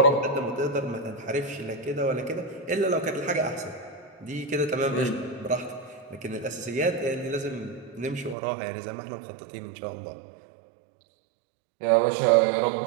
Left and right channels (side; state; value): left; drops out; at 8.3 s